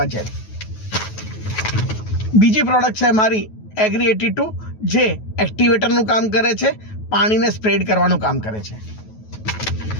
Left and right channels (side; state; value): right; late; 9.3 ms